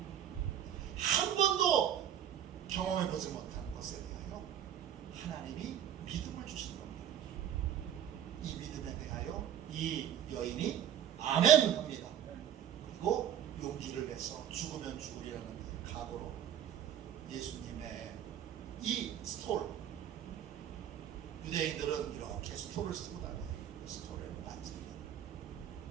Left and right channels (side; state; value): left; quieter; 10.0 dB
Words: 한 번도 경험해보지 못한 것에 대하여 하나님이 믿음을 주신 겁니다. 이 믿음에 대하여 이 여인이 아멘 합니다. 그리고 용기를 내서 죽으면 죽으리라는 각오로 예수님의 이 스톨, 유대인들은 이렇게 스톨을 쓰고 다녀요. 스톨을 만집니다.